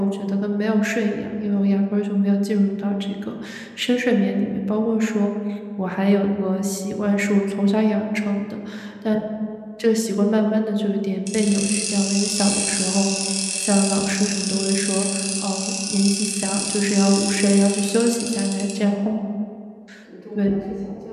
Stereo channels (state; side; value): identical; both; correlation 1.00